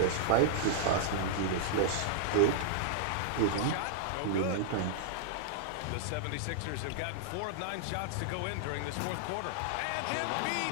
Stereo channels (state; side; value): different; both; correlation -0.01